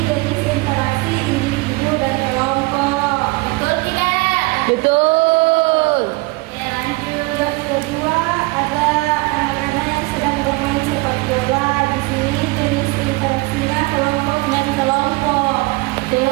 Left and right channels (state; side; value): quieter; left; 24.5 dB